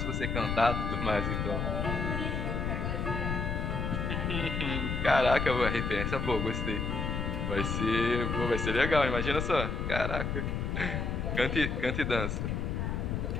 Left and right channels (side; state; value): left; noise; rumble, 1 dB below the sound